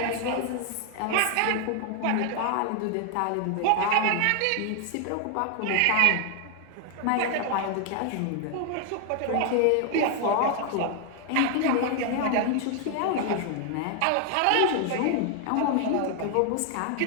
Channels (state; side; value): different; both; correlation 0.00